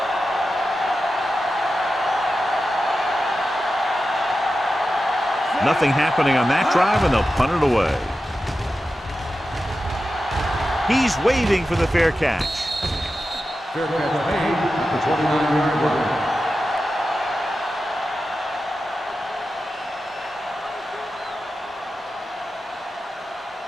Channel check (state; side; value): normal; both; correlation 0.92